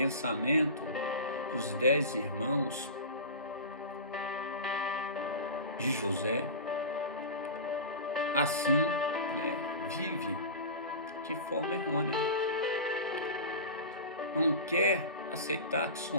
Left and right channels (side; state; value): both; inverted; correlation -0.30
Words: dos 10 irmãos de José, assim, vive de forma errônea. Não quer aceitar que